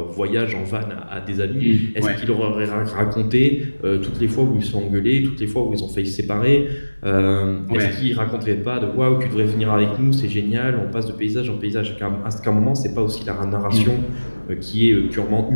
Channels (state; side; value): inverted; both; correlation -1.00